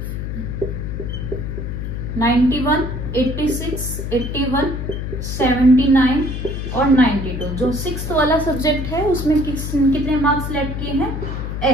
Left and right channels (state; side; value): noise; left; hum, 4 dB below the sound